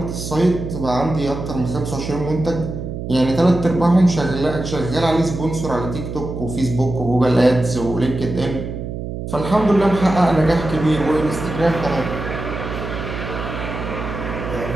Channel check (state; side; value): noise; right; hum, 6 dB below the sound